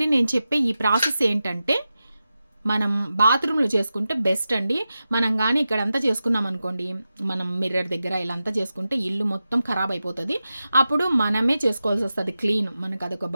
నేను చెప్పే ఈ ప్రాసెస్ ఏంటంటే మనం బాత్రూంలో చేసుకుంటే బెస్ట్ అండి. మనం కానీ ఇక్కడంతా చేసుకున్నాం అనుకోండి, మనం మిర్రర్ దగ్గర ఇలా అంతా చేసుకుంటే ఇల్లు మొత్తం ఖరాబ్ అయిపోతుంది. అప్పుడు మనమే చేసుకోవాల్సి వస్తుంది క్లీన్. మనకు అదొక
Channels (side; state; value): both; inverted; correlation -0.92